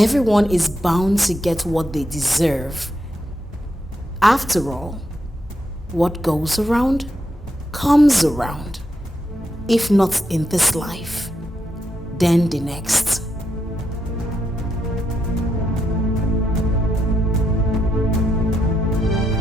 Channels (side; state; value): both; normal; correlation 0.82